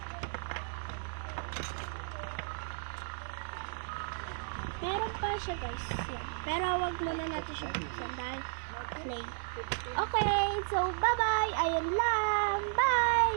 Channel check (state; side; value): silent; left; digital silence